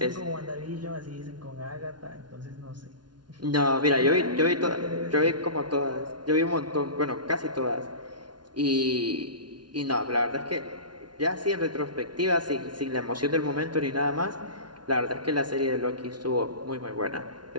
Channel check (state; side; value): late; left; 0.70 ms